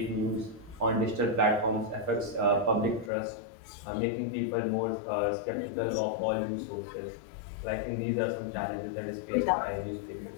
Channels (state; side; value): drops out; right; at 3.1 s